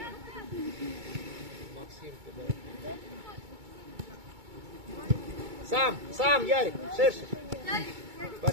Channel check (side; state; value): left; late; 2.2 ms